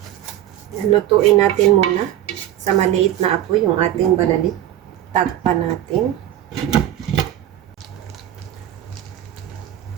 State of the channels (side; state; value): left; quieter; 12.2 dB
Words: Lutuin natin muna sa maliit na apoy yung ating balalit. Takpan natin.